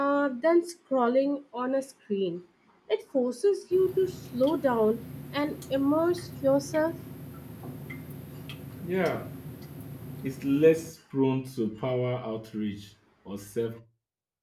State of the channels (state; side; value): identical; both; correlation 1.00